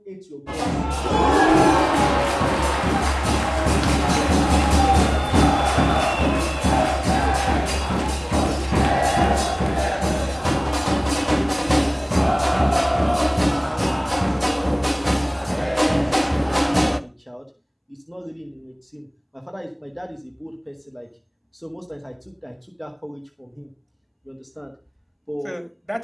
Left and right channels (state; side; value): identical; both; correlation 1.00